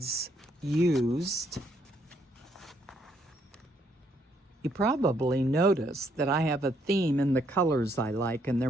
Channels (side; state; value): both; normal; correlation 0.71